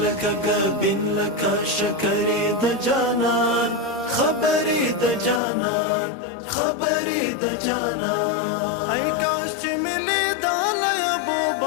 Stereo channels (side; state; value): right; drops out; at 5.4 s